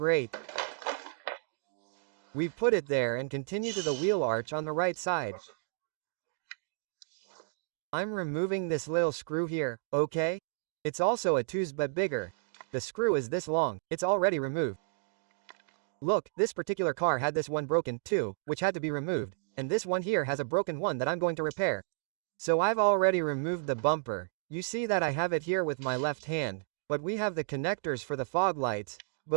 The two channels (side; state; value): left; silent; digital silence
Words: We put it there and continue to the wheel arch on the right side. I'm removing this little screw here, okay? It's also a 2's but bigger. The screw is this long, it's already removed. Look, this particular car had this one broken, too, which had to be removed, and this one here has a broken one that I'm going to repair. So I've already removed the bumper. You see that I have it here with my left hand, but we have the connectors for the fog lights,